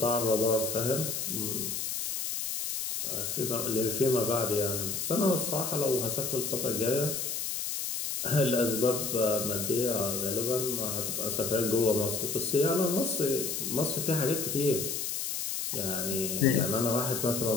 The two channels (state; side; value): noise; left; hiss, 2 dB below the sound